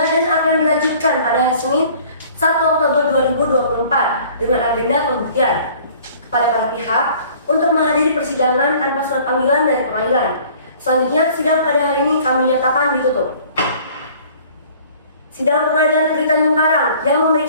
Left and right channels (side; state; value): both; inverted; correlation -0.52